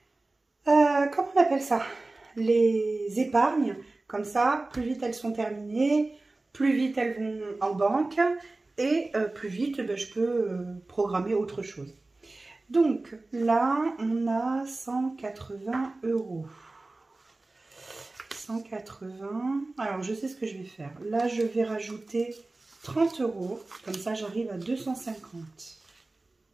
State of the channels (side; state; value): left; quieter; 3.1 dB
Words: comment on appelle ça? Les épargnes. Comme ça, plus vite elles sont terminées, plus vite elles vont en banque et plus vite je peux programmer autre chose. Donc là, on a 180 €. 180. Alors, je sais ce que je vais faire. Là, je vais rajouter 30 €. Comme ça, j'arrive à 250.